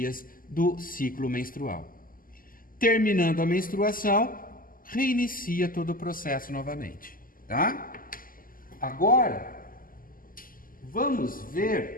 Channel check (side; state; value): right; late; 0.41 ms